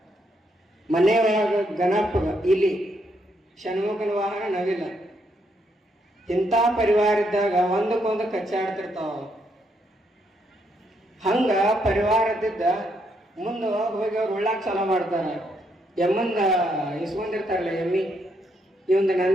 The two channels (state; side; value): normal; both; correlation 0.76